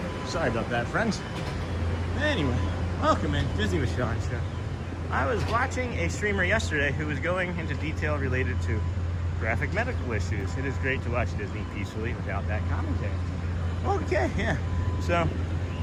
Sorry about that, friends. Anyway, welcome in Disney with Sean Show. I was watching a streamer yesterday who was going into detail related to graphic medical issues. It is great to watch Disney peacefully without that commentary. Okay, yeah. So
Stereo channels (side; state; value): both; identical; correlation 1.00